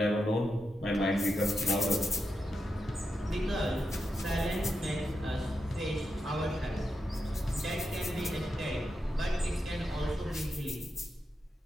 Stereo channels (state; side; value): normal; both; correlation 0.87